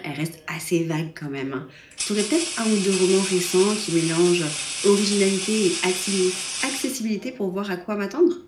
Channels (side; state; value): both; identical; correlation 1.00